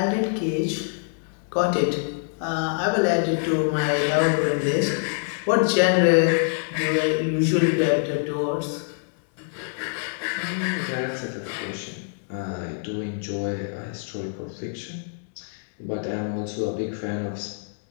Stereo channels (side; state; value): right; silent; digital silence